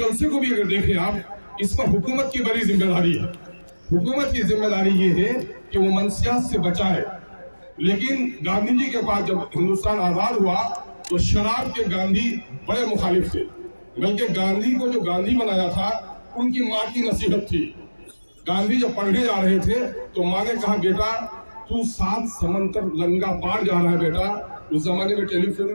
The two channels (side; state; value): both; inverted; correlation -1.00